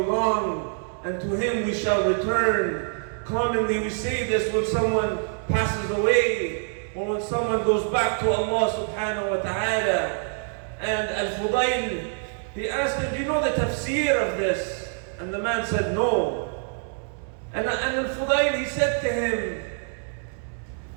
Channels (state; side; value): silent; left; 61 dB below the other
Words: and to Him we shall return. Commonly we say this when someone passes away, or when someone goes back to Allah subhanahu wa ta'ala. And Al-Fudayl, he asked him, do you know the tafsir of this? And the man said, no. And Al-Fudayl, he said to him,